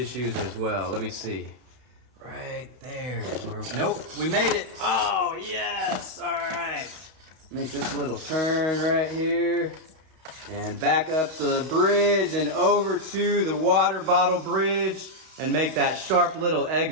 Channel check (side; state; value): left; late; 32 ms